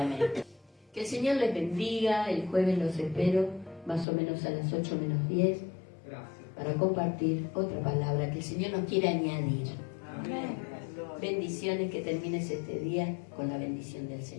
Que el Señor les bendiga. El jueves los espero más o menos a las 8 menos 10 para compartir otra palabra que el Señor nos quiere añadir. Amén. Bendiciones, que termines este día con la bendición del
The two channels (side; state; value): right; drops out; at 4.0 s